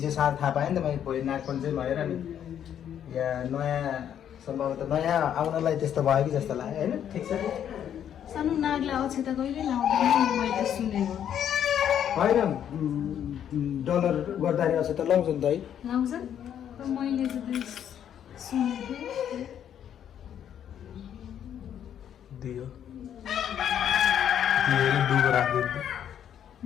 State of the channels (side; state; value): right; quieter; 9.6 dB